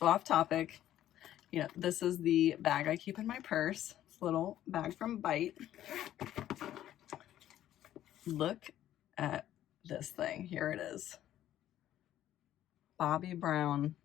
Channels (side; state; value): right; quieter; 12.3 dB